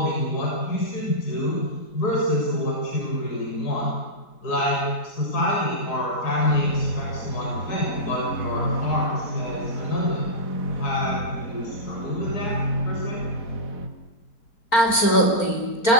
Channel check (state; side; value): late; right; 4.4 ms